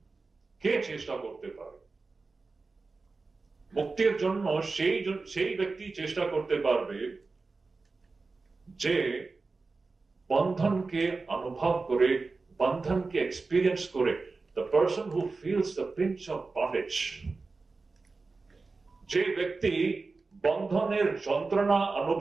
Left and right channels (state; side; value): quieter; left; 3.9 dB